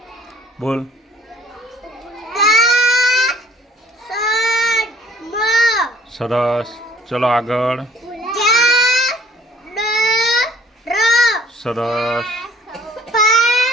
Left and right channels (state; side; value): normal; both; correlation 0.55